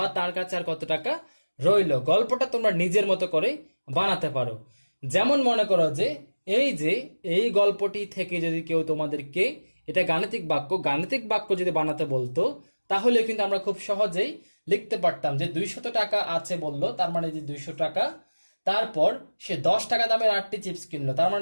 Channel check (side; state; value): both; inverted; correlation -1.00